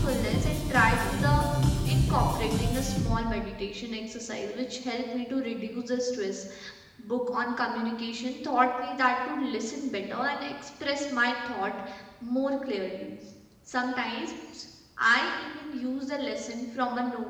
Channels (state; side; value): identical; both; correlation 1.00